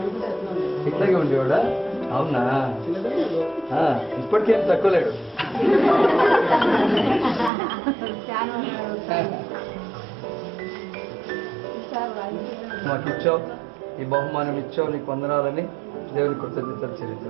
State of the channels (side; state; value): left; drops out; at 7.5 s